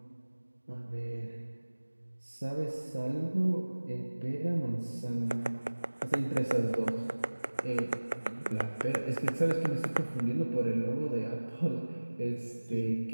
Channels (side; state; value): both; inverted; correlation -1.00